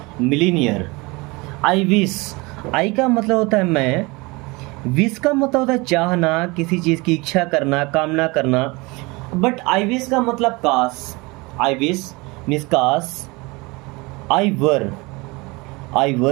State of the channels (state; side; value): quieter; left; 25.0 dB